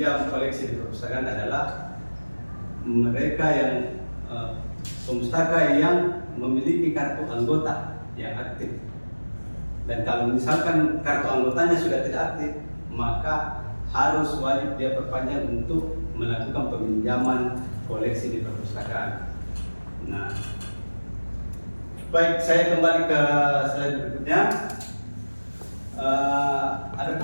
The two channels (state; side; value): inverted; both; correlation -1.00